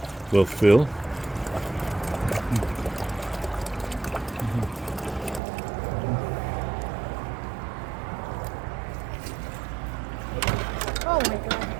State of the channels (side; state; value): left; drops out; at 5.4 s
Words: will fill. Oh my god,